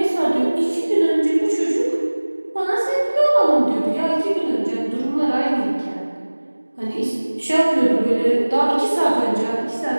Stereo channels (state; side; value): inverted; both; correlation -1.00